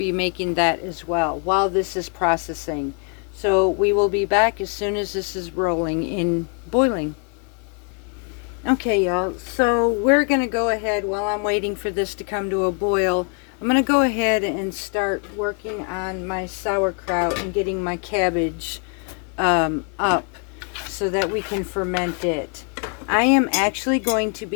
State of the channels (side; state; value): right; quieter; 39.0 dB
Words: making that as well while this is processing. So we will be back as soon as this is rolling in boiling. Okay, y'all, so we're going to go ahead, while I'm waiting for this to come to a boil, I'm going to go ahead and start working on my sauerkraut and getting my cabbage up so that we can ferment it. I am actually going to